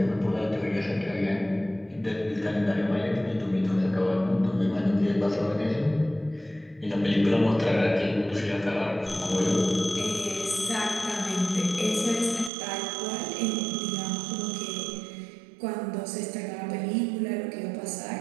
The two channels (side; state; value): left; drops out; at 12.5 s